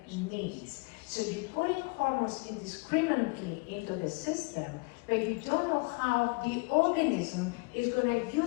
needs. So you're putting hormones indiscriminately into the system, but you don't know how the organism is going to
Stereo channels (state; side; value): quieter; right; 30.1 dB